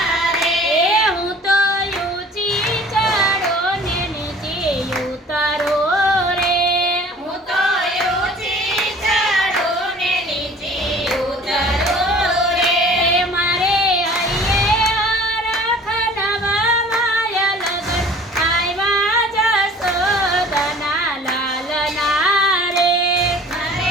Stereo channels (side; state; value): both; normal; correlation 0.48